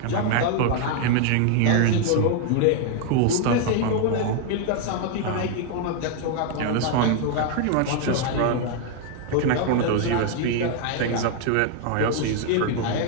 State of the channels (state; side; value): different; both; correlation 0.00